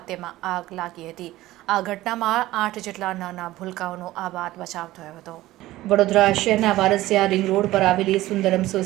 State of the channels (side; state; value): left; quieter; 16.5 dB